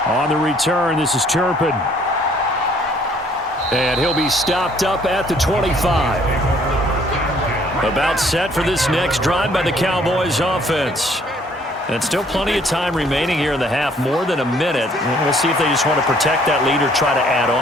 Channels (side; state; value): both; normal; correlation 0.61